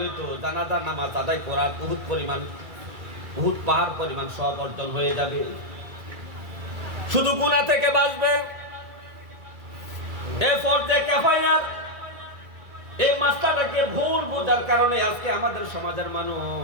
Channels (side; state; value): left; late; 2.0 ms